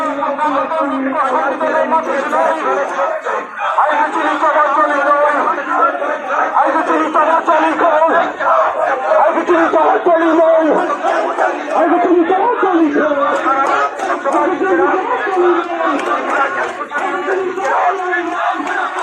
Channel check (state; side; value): identical; both; correlation 1.00